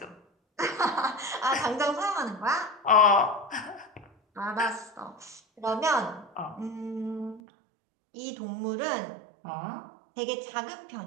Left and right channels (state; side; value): drops out; left; at 7.4 s